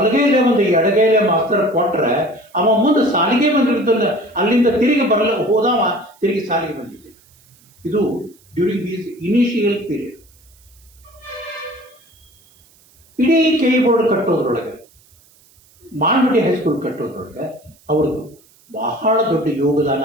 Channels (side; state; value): right; noise; hiss, 30 dB below the sound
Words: ಒಂದು ಎಡಗೈಲೆ ಮಾಸ್ತರ್ ಕೊಟ್ರೆ ಅವ ಮುಂದೆ ಸಾಲಿಗೆ ಬಂದಿರ್ತಲ್ಲ, ಅಲ್ಲಿಂದ ತಿರುಗಿ ಹೋದವ ತಿರುಗಿ ಸಾಲಿಗೆ ಬಂದಿದ್ದೆ. ಇದು ಡ್ಯೂರಿಂಗ್ ದೀಸ್ ಇನಿಷಿಯಲ್ ಪೀರಿಯಡ್. ಇಡೀ ಕೆ ಬೋರ್ಡ್ ಕಟ್ಟೋದ್ರೊಳಗೆ, ಮಾಳಮಡ್ಡಿ ಹೈಸ್ಕೂಲ್ ಕಟ್ಟೋದ್ರೊಳಗೆ ಅವ್ರದ್ದು ಬಹಳ ದೊಡ್ಡ ಯೋಗದಾನ